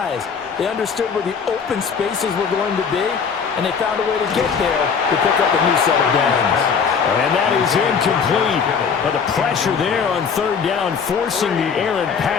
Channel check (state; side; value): quieter; right; 6.2 dB